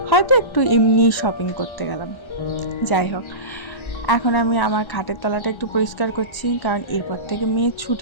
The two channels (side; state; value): right; late; 1.3 ms